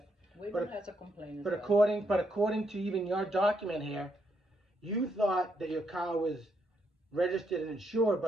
Weymouth has a complaint as But well. according to even your document here, you thought that your car was registered and insured,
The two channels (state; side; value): normal; both; correlation 0.76